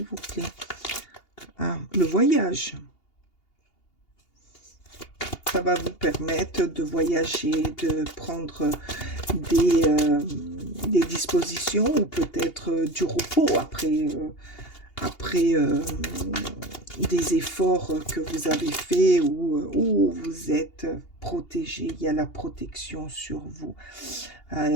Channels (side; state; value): right; late; 2.8 ms